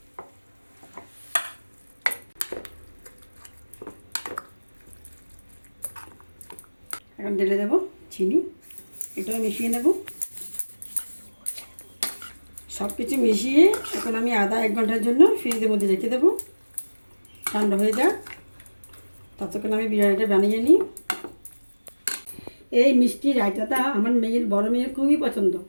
এখন ঢেলে দেবো চিনি, এটাও মিশিয়ে নেব। সব কিছু মিশিয়ে এখন আমি আধা 1 ঘন্টার জন্য ফ্রিজের মধ্যে রেখে দেবো, ঠান্ডা হয়ে যাক। ততক্ষণ আমি বিরিয়ানিটা বানিয়ে নিই। এই মিষ্টি রায়তাটা আমার বড় মেয়ের খুবই পছন্দ।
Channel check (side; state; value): both; inverted; correlation -1.00